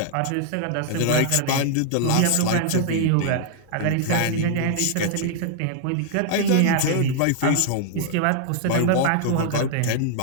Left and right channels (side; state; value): both; different; correlation -0.01